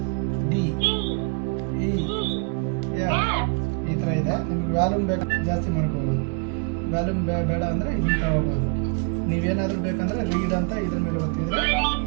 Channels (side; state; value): left; quieter; 35.9 dB